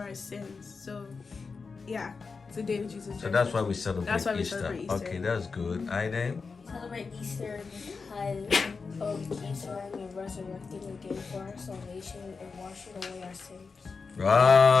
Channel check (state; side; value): quieter; right; 4.8 dB